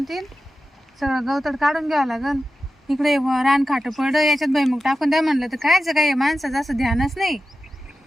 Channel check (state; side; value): normal; both; correlation 0.93